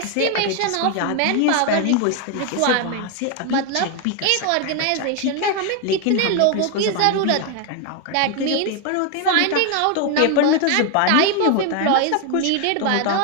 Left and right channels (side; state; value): both; different; correlation 0.01